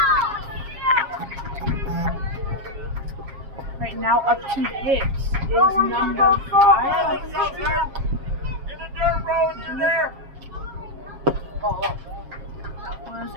Right now, up to hits is number 5. That was a ball.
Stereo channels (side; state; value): left; late; 7.4 ms